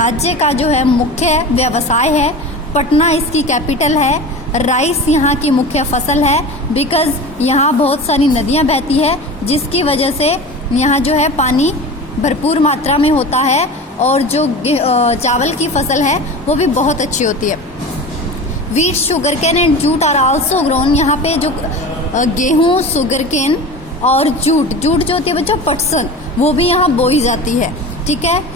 का जो है मुख्य व्यवसाय है। पटना इसकी कैपिटल है। राइस यहाँ की मुख्य फसल है, बिकॉज़ यहाँ बहुत सारी नदियाँ बहती है, जिसकी वजह से यहाँ जो है पानी भरपूर मात्रा में होता है, और जो चावल की फसल है वो भी बहुत अच्छी होती है। Wheat, sugar cane and jute are also grown. यहाँ पे जो गेहूँ, शुगर केन और जूट जो होती है बच्चों पटसन, वो भी यहाँ बोई जाती है। ठीक है।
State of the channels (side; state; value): both; normal; correlation 0.32